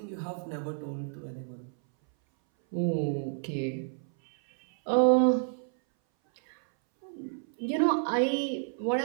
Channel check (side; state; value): left; silent; 58 dB below the other